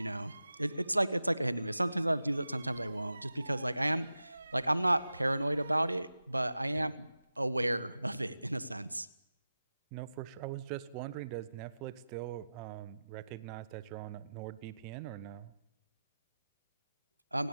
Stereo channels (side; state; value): both; inverted; correlation -0.93